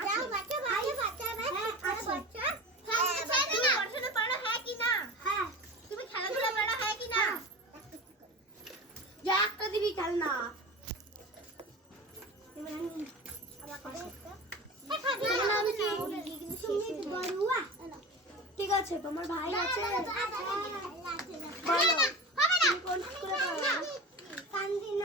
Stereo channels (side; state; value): both; normal; correlation 0.31